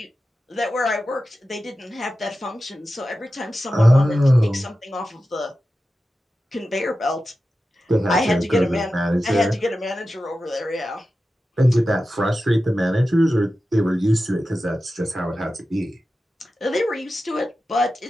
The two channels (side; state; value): both; normal; correlation 0.93